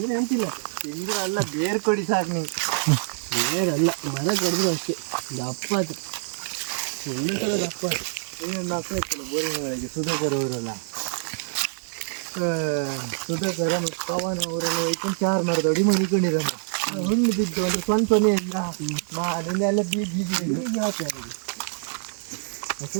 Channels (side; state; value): left; silent; 56 dB below the other